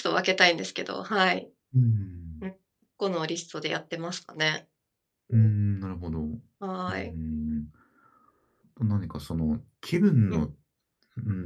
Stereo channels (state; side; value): identical; both; correlation 1.00